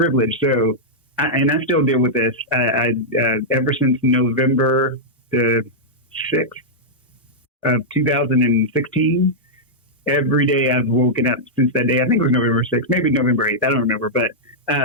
So, I still deal with this. Ever since November the 6th of 2016, every day I've woken up since that day. I think it was November 6th, maybe November 8th. I don't remember, but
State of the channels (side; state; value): both; normal; correlation -0.08